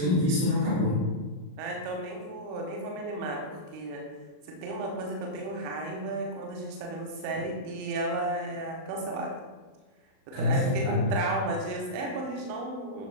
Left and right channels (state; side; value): late; left; 38 ms